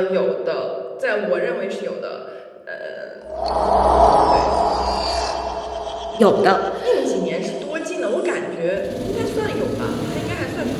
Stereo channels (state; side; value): identical; both; correlation 1.00